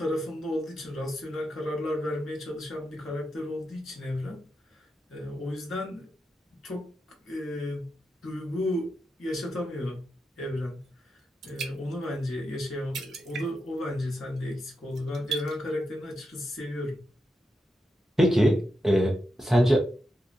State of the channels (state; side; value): normal; both; correlation 0.87